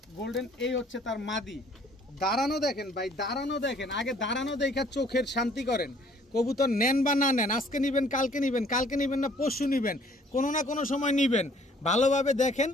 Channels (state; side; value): normal; both; correlation 0.58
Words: গোল্ডেন, এই হচ্ছে তার মাদি। দাঁড়ানো দেখেন ভাই, দাঁড়ানো দেখেন, আগে দাঁড়ানো দেখা চোখের শান্তি করেন। কবুতর নেন বা না নেন, আজকে নিবেন, কালকে নিবেন, কালকে নিবেন না পরশু নিবেন, কোনো না কোনো সময় নিবেন, ভালোভাবে দেখেন।